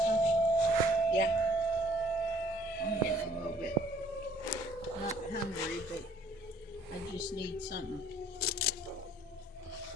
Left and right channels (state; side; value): normal; both; correlation 0.60